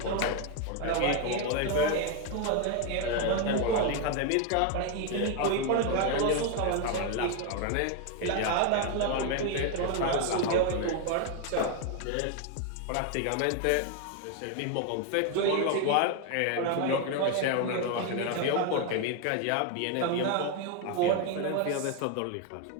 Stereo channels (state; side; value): different; both; correlation 0.01